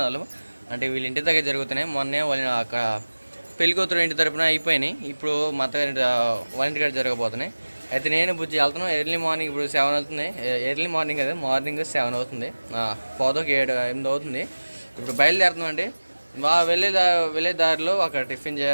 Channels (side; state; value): both; inverted; correlation -1.00